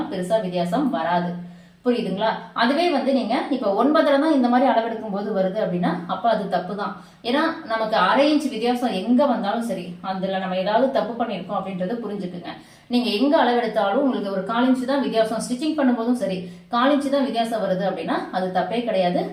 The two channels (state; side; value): identical; both; correlation 1.00